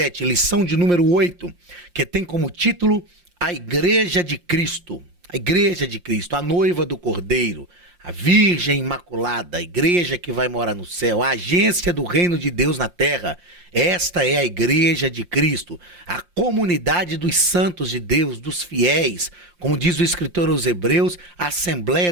lição de número 8, que tem como título A Igreja de Cristo. A Igreja de Cristo, a noiva do Cordeiro, a Virgem Imaculada, a igreja que vai morar no céu, a agência do reino de Deus na terra. Esta é a Igreja de Cristo, a comunidade dos santos de Deus, dos fiéis, como diz o escritor aos Hebreus, a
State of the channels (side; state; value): left; late; 5.7 ms